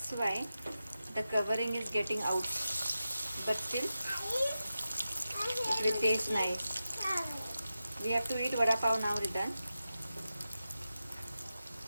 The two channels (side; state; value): both; inverted; correlation -0.91